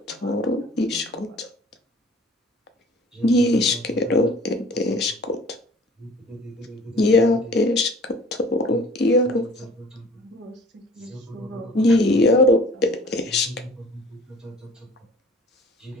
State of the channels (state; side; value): normal; both; correlation 0.49